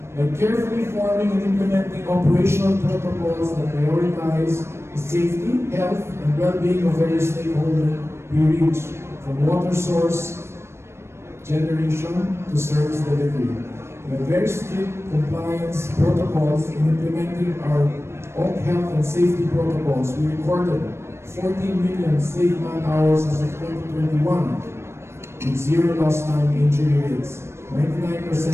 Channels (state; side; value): late; left; 0.13 ms